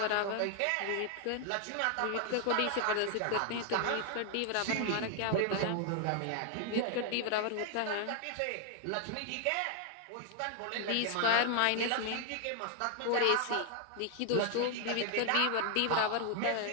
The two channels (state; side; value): different; both; correlation 0.00